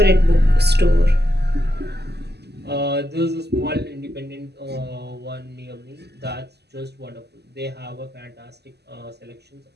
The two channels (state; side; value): late; left; 0.49 ms